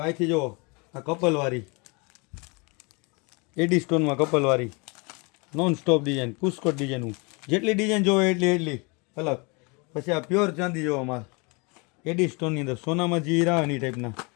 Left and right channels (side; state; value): right; quieter; 29.7 dB